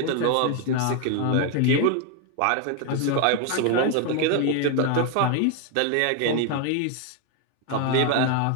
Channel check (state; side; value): different; both; correlation 0.01